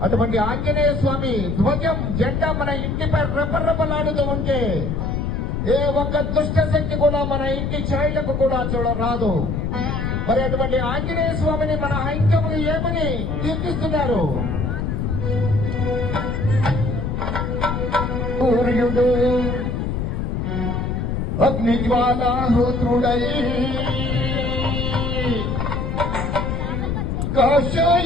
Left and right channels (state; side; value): noise; left; rumble, 1 dB below the sound